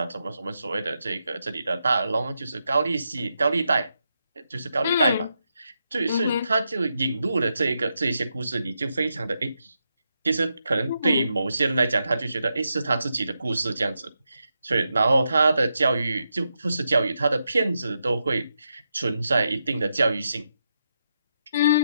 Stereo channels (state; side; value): inverted; both; correlation -0.84